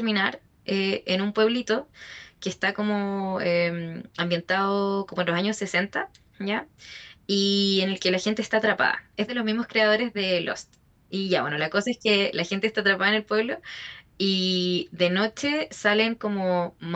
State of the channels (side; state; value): both; identical; correlation 1.00